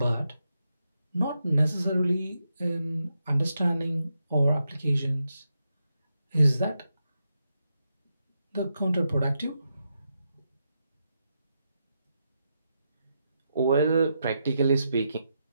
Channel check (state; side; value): inverted; both; correlation -0.85